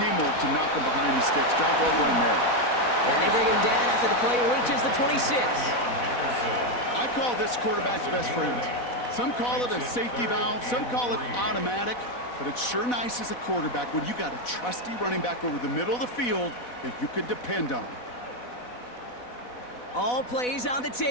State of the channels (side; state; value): right; late; 4.1 ms